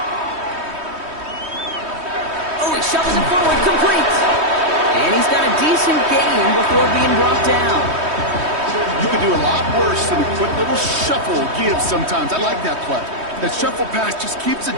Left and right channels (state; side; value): late; left; 3.2 ms